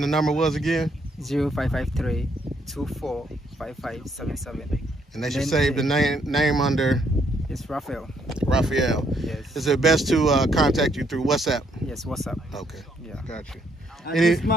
the number was again? 0553-245577. And they should save the name under? It's Raphael. Raphael. Yes. Is it best to contact you through WhatsApp? Yes, WhatsApp. Okay. Yeah. Got you.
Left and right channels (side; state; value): both; normal; correlation 0.71